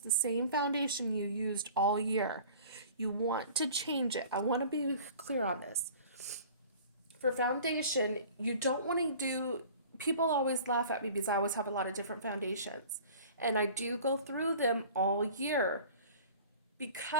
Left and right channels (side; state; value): both; inverted; correlation -0.45